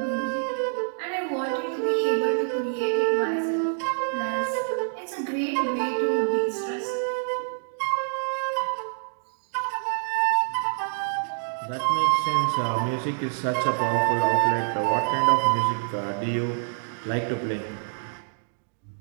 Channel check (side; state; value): left; silent; digital silence